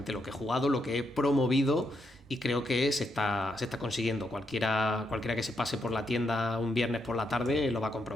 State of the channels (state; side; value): normal; both; correlation 0.80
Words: lo que he jugado, lo que he promovido. Y creo que se está consiguiendo. Cualquiera que se pase por la tienda un viernes por la tarde lo va a